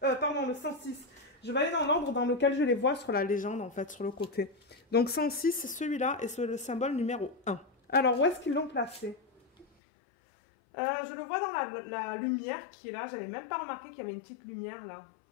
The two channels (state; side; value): drops out; right; at 9.7 s